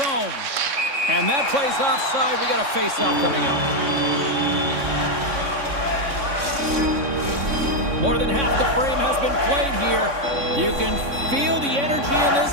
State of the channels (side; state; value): left; late; 3.6 ms